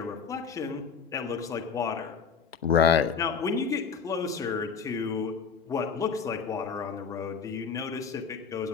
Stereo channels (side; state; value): right; quieter; 6.0 dB